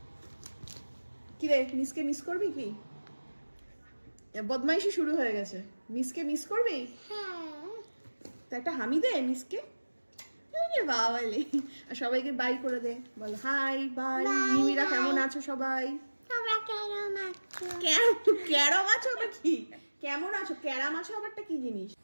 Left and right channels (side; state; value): both; inverted; correlation -1.00